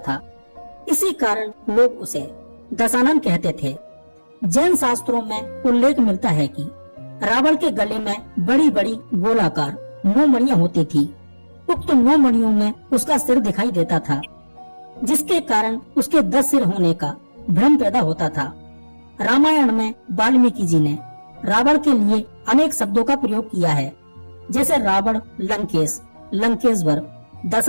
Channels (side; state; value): both; inverted; correlation -1.00